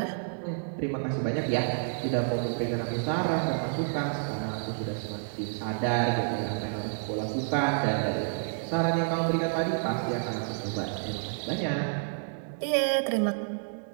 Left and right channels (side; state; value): left; silent; digital silence